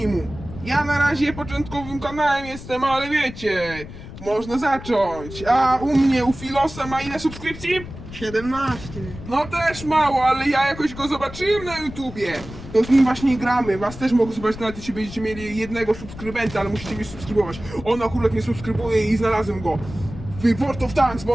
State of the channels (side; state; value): left; noise; rumble, 13 dB below the sound